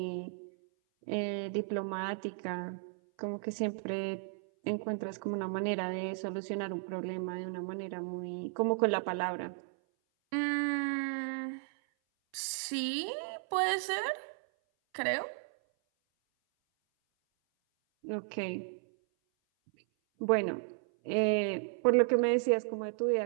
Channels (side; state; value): left; silent; 55 dB below the other